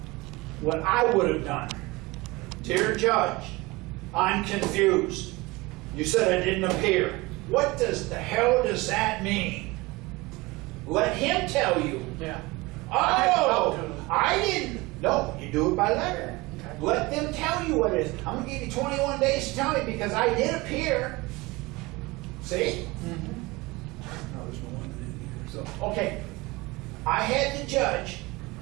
What I would have done, dear judge, I'm confused. You said I didn't appear. What the hell does that mean? Let him tell you. yeah. I had to talk to Oh, him. I didn't. No, you do it by letter. Let them tell you what it is. I'm gonna give you 21 days to tell me because I did appear. See? No, there's no one in here. So, okay. I had the judge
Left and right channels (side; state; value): left; quieter; 22.6 dB